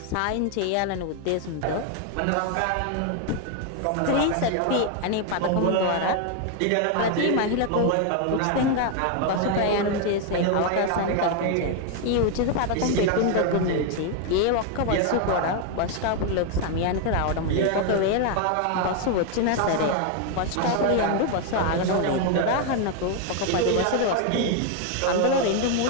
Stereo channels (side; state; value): both; different; correlation 0.01